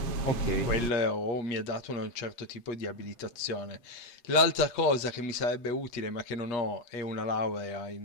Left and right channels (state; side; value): late; right; 8.4 ms